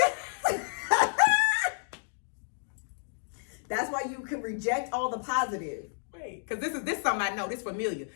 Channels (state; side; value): silent; right; digital silence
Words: That's why you can reject all the positive. Wait, because this is something I know. This familiar.